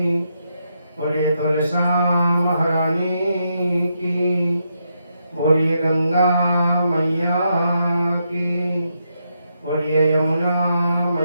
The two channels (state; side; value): inverted; both; correlation -0.81